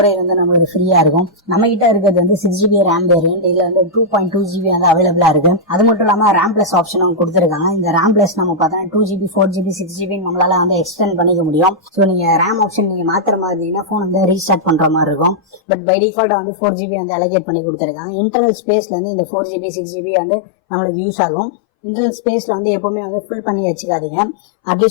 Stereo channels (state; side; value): drops out; right; at 15.6 s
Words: வந்து நமக்கு ஃப்ரீயா இருக்கும். நம்ம கிட்ட இருக்கிறது வந்து 6GB ரேம் வேரியன்ட். இதுல வந்து 2.2GB வந்து அவைலபிளா இருக்கு. அது மட்டும் இல்லாம ரேம் பிளஸ் ஆப்ஷனும் கொடுத்துருக்காங்க. இந்த ரேம் பிளஸ் நம்ம பார்த்தோன்னா 2GB 4GB 6GB நம்மளால வந்து எக்ஸ்டெண்ட் பண்ணிக்க முடியும். ஸோ நீங்க ரேம் ஆப்ஷன் நீங்க மாத்திர மாதிரி இருந்தீங்கன்னா போன் வந்து ரீஸ்டார்ட் பண்ற மாதிரி இருக்கும். பட் பை டிஃபால்ட்டா வந்து 4GB வந்து அலோகேட் பண்ணி கொடுத்துருக்காங்க. இன்டர்னல் ஸ்பேஸ்ல இருந்து இந்த 4GB 6GB வந்து நம்மளுக்கு யூஸ் ஆகும். இன்டர்னல் ஸ்பேஸ்ல வந்து எப்பவுமே வந்து ஃபுல் பண்ணி வச்சுக்காதீங்க.